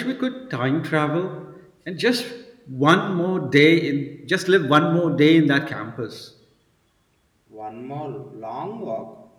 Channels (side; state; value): both; identical; correlation 1.00